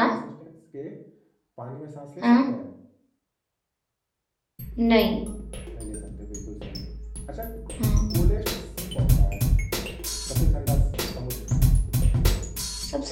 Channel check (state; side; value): identical; both; correlation 1.00